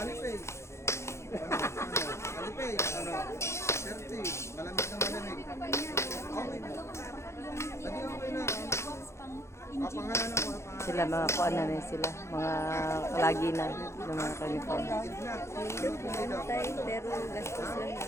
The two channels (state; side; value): late; right; 0.13 ms